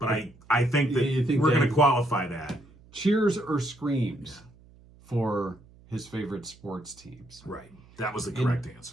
I think that You think we're they- going to qualify that. Cheers or screams for his favorite sports teams. Right. That was the correct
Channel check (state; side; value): noise; right; hum, 25 dB below the sound